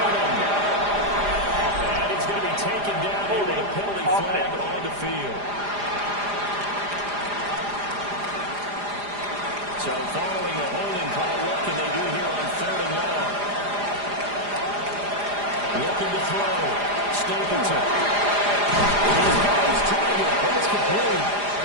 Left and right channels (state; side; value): late; left; 4.9 ms